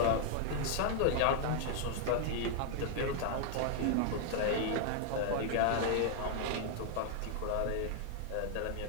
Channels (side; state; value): both; different; correlation 0.00